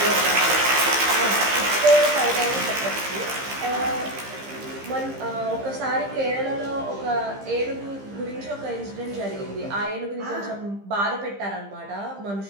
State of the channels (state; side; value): late; left; 15 ms